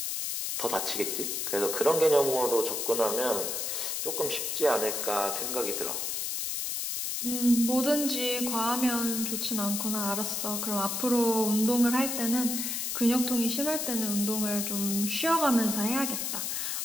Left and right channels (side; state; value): left; noise; hiss, 2 dB below the sound